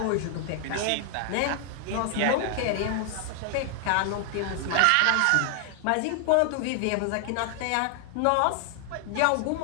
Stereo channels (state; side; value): different; both; correlation 0.00